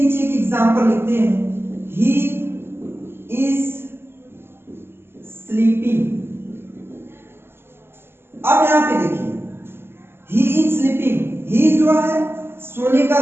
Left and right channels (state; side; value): late; left; 0.11 ms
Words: एक एग्जांपल लिखते हैं, ही इज स्लीपिंग। अब यहां पे देखिए, ही इज स्लीपिंग, ही जो है सोने का